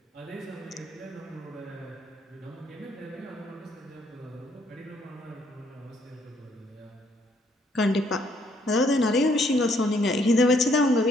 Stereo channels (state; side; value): normal; both; correlation 0.68